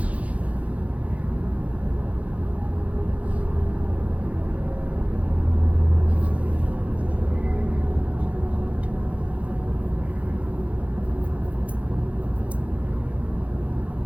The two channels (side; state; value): left; late; 0.066 ms